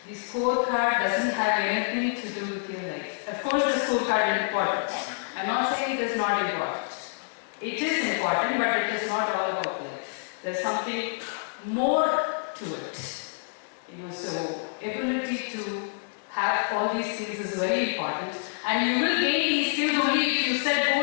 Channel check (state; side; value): silent; right; 60 dB below the other